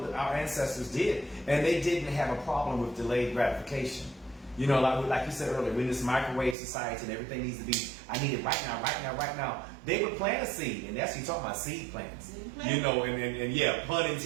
ancestors did, and they didn't have a problem with delayed gratification. You know, like you said earlier, we're in this microwave society and everything needs to be, I need it right now, right now, right now. They would plant a seed, and that's, you talking about seed plants. You know, and yeah, pun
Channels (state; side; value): drops out; left; at 6.6 s